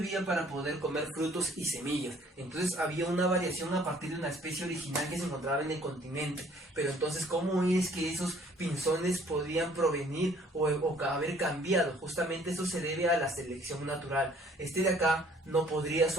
para poder comer frutos y semillas. Entonces había una variación a partir de una especie original que se encontraba en el continente. Pero entonces, ¿cómo es que esos pinzones podían provenir o haber cambiado? Justamente eso se debe a la selección natural. Este de acá no podría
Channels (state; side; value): normal; both; correlation 0.58